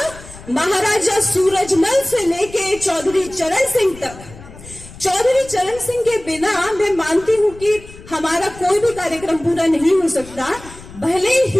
महाराजा सूरजमल से लेके चौधरी चरण सिंह तक। चौधरी चरण सिंह के बिना मैं मानती हूँ कि हमारा कोई भी कार्यक्रम पूरा नहीं हो सकता। भले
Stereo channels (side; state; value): left; noise; rumble, 18 dB below the sound